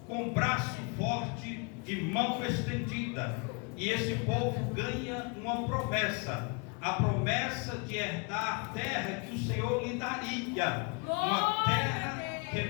com braço forte e mão estendida, e esse povo ganha uma promessa, a promessa de herdar a terra que o Senhor lhe daria, uma terra que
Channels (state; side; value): quieter; right; 32.6 dB